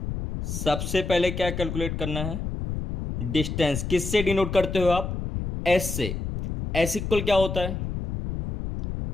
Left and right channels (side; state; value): left; noise; rumble, 4 dB below the sound